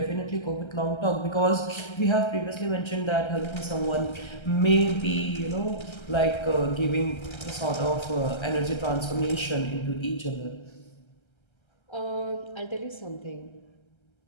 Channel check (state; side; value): late; right; 1.3 ms